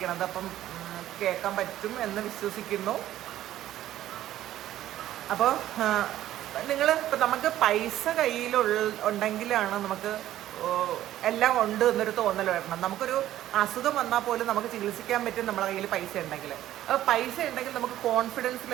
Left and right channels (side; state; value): left; quieter; 13.3 dB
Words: അപ്പം കേൾക്കാൻ പറ്റും എന്ന് വിശ്വസിക്കുന്നു. അപ്പോൾ ഇപ്പം നമുക്ക് പൈസ ഉണ്ടെങ്കിലാണ് നമുക്ക് എല്ലാം ഉണ്ട് എന്നൊരു തോന്നൽ വരണം. നമുക്കൊരു അസുഖം വന്നാൽ പോലും നമുക്ക് ചികിത്സിക്കാൻ പറ്റും നമ്മുടെ കയ്യിൽ പൈസ ഉണ്ടെങ്കിൽ. അപ്പോൾ പൈസ ഉണ്ടെങ്കിൽ നമുക്ക് കോൺഫിഡൻസ്